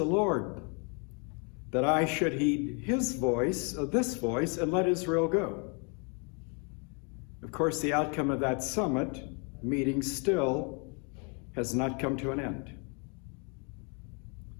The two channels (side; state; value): right; quieter; 35.9 dB